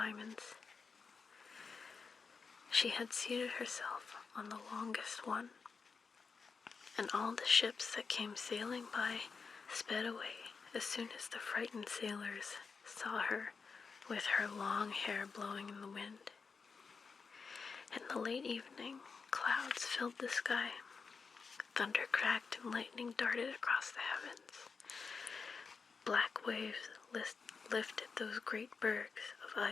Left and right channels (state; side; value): quieter; right; 5.1 dB